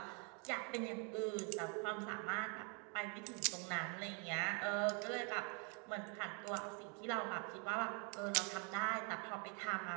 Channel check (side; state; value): left; quieter; 36.7 dB